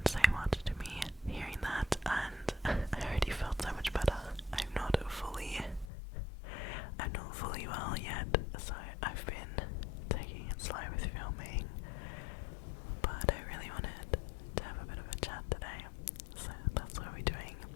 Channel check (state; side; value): drops out; right; at 5.9 s